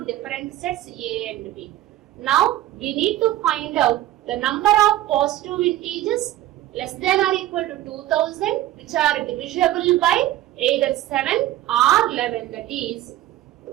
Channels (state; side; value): quieter; left; 14.3 dB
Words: different sets A and B. Now we need to find out the number of positive integers less than or equal to 2000, which are divisible by either 7 or 11. That is,